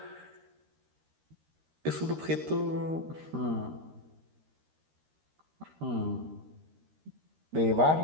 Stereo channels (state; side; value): late; left; 13 ms